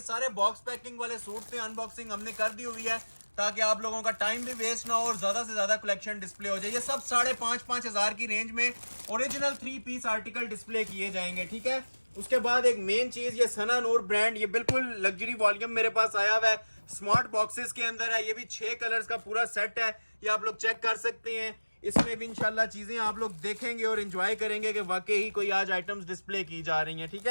सारे बॉक्स पैकिंग वाले सूट थे, अनबॉक्सिंग हमने कर दी हुई है ताकि आप लोगों का टाइम भी वेस्ट ना हो और ज्यादा से ज्यादा कलेक्शन डिस्प्ले हो जाए। ये सब 5,500 की रेंज में ओरिजिनल 3 पीस आर्टिकल डिस्प्ले किए जाएंगे। ठीक है, उसके बाद एक मेन चीज, ये सना नूर ब्रांड, ये बिल्कुल लग्जरी वॉल्यूम मेरे पास आया हुआ है, स्मार्ट बॉक्सेस के अंदर है। ये भी 6 कलर्स का पूरा सेट है, ये आप लोग चेक कर सकते हैं। इसमें भी इंशाल्लाह चीजें आप लोग देखेंगे और एंजॉय करेंगे कि वाकई ही कोई आज आइटम्स डिस्प्ले की जा रही हैं। ठीक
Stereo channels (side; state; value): both; inverted; correlation -1.00